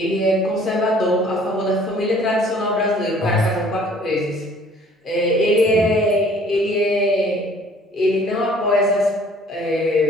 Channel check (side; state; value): both; normal; correlation 0.55